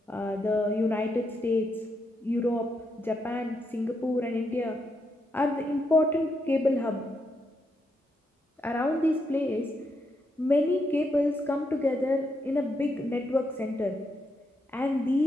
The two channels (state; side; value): normal; both; correlation 0.80